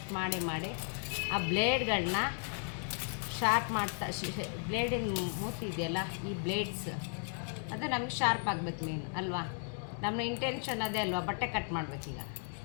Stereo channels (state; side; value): silent; right; 54 dB below the other